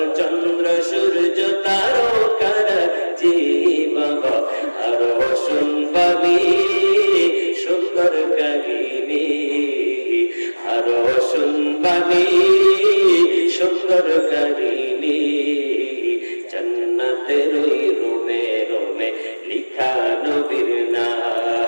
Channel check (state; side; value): inverted; both; correlation -1.00